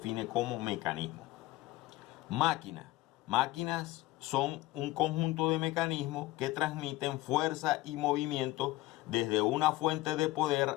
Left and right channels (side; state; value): right; quieter; 18.3 dB